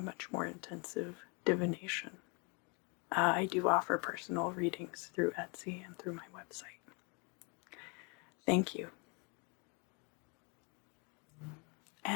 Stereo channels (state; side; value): quieter; right; 33.0 dB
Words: much more intensive divination. I do offer personal readings through Etsy and through my website. Thank you.